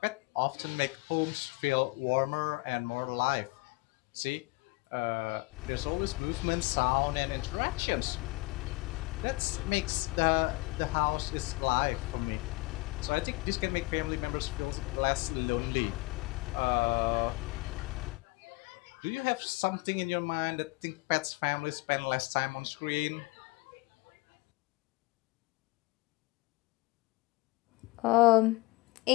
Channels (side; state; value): right; quieter; 23.4 dB